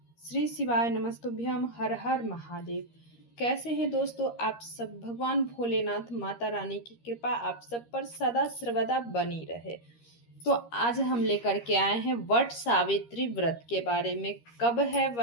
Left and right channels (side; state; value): right; late; 13 ms